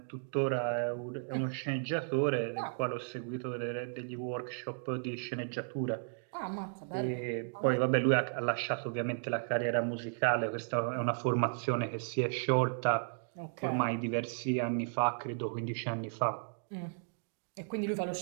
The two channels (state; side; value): silent; left; digital silence